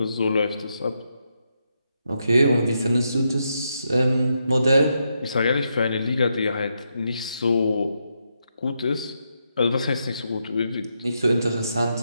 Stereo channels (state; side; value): inverted; both; correlation -0.83